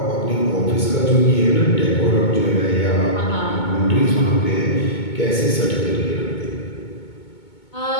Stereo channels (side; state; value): right; late; 2.2 ms